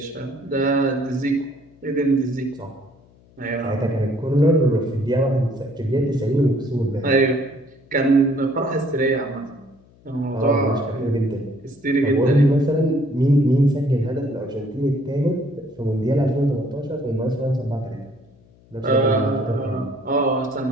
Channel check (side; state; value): left; noise; hum, 29 dB below the sound